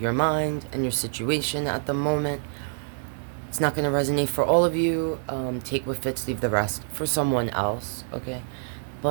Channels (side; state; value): left; silent; digital silence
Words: mind and your situation at the moment. It's not going to resonate for all of you. Take what fits, leave the rest for someone else, okay?